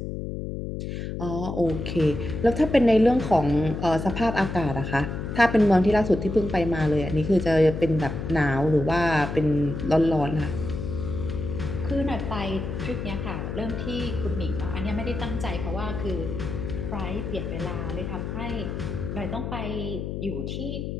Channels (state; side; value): noise; left; hum, 5 dB below the sound